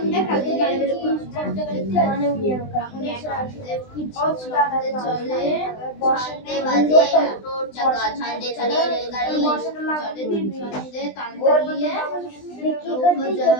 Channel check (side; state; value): right; late; 20 ms